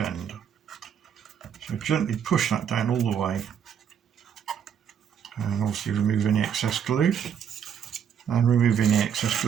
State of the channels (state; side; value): quieter; left; 8.2 dB